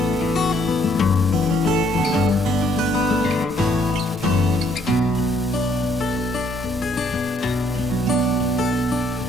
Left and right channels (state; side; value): normal; both; correlation 0.67